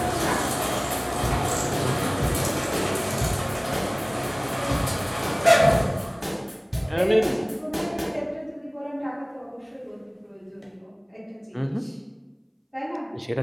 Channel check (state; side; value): identical; both; correlation 1.00